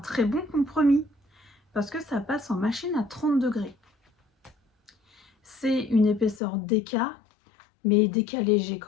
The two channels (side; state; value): right; drops out; at 6.4 s